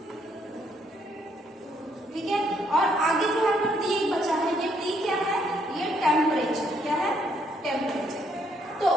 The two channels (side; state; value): both; normal; correlation 0.71